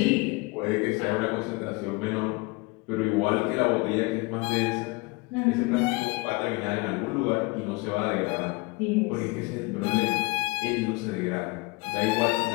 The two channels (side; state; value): right; quieter; 26.0 dB